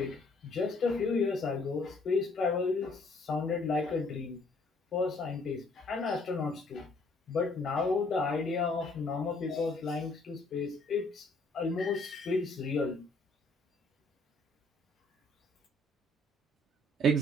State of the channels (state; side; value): normal; both; correlation 0.64